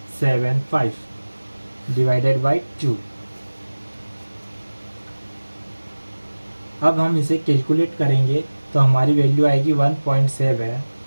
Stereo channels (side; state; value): both; inverted; correlation -1.00